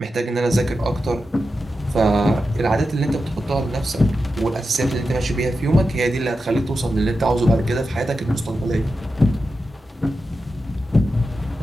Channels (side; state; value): both; normal; correlation 0.90